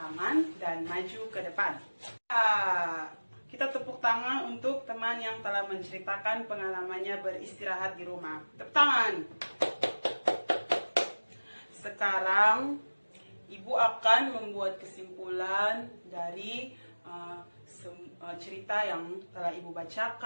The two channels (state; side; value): inverted; both; correlation -1.00